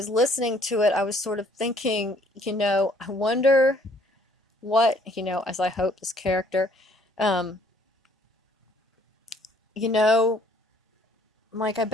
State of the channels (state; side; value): normal; both; correlation 0.61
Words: listening to it, I was sort of thinking, I wonder what, as I hope this character, um, like I